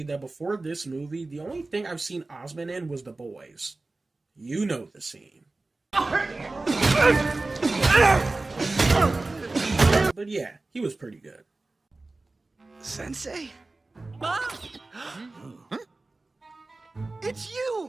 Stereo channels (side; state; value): left; quieter; 3.2 dB